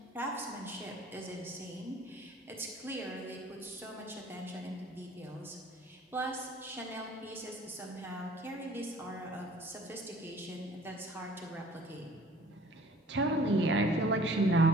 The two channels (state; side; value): normal; both; correlation 0.52